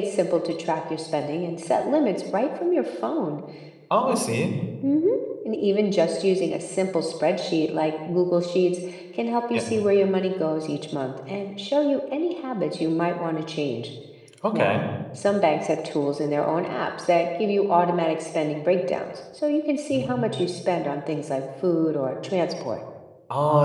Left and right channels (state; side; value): identical; both; correlation 1.00